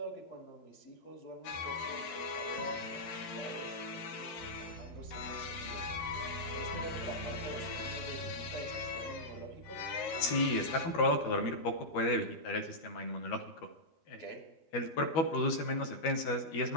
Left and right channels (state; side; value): late; right; 12 ms